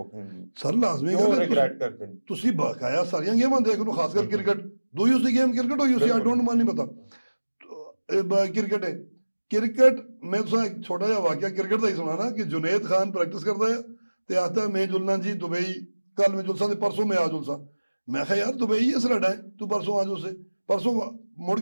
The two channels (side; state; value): both; inverted; correlation -1.00